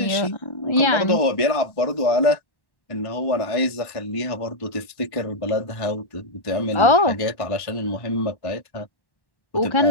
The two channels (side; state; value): right; late; 1.1 ms